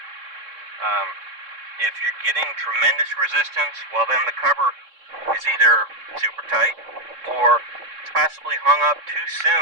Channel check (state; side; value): late; left; 3.6 ms